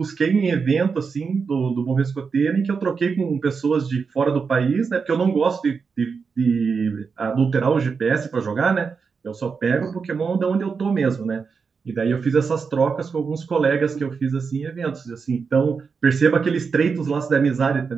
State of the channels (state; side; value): quieter; left; 5.4 dB